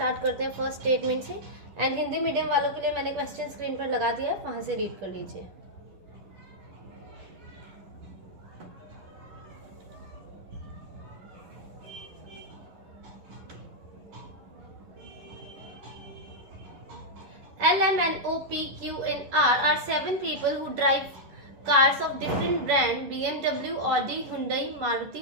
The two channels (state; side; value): late; left; 10 ms